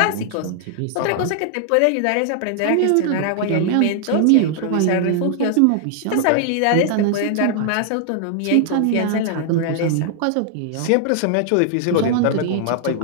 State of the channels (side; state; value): both; different; correlation -0.01